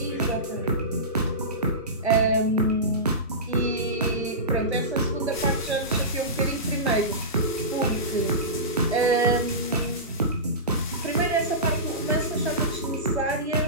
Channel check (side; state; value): both; normal; correlation -0.20